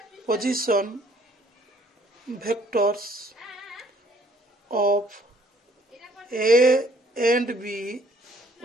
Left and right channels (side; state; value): both; normal; correlation 0.61